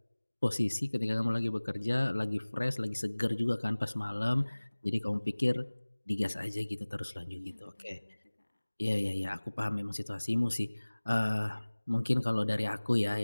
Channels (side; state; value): both; inverted; correlation -1.00